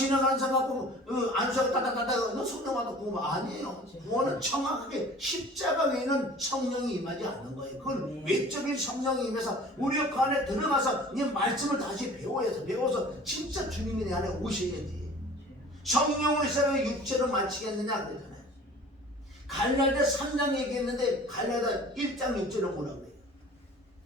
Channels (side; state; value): both; normal; correlation 0.46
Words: 사람 갖고 안수하고 따따따따 너 성령 받아 구원 아니에요. 구원은 정확하게 십자가 외에는 성령이 임하지 않는 거예요. 그건 외적인 성령이 임해서 우리 그 안에 들어가서 이 말씀을 다시 배워서 진짜 주님이 내 안에 오셔야지. 성령으로 시작해 육체로 마치겠느냐 그러잖아요. 갈라디아 3장 얘기했는데 갈라디아 1장 6절은 뭐라고 그래요?